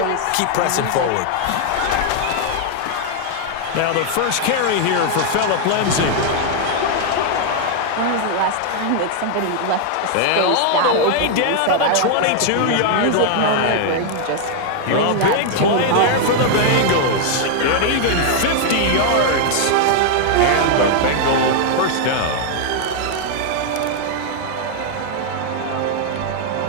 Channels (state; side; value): different; both; correlation 0.00